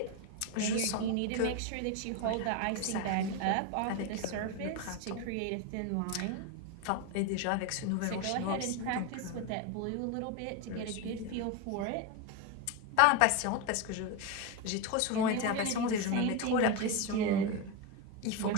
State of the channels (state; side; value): different; both; correlation 0.03